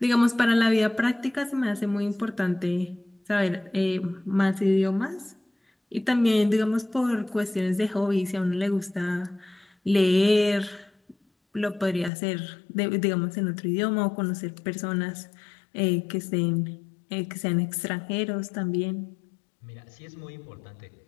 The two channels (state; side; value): drops out; right; at 12.1 s